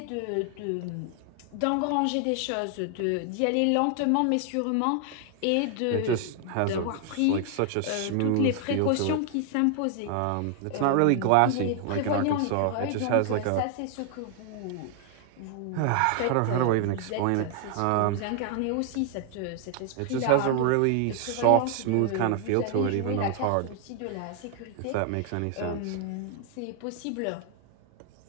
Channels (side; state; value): both; different; correlation 0.00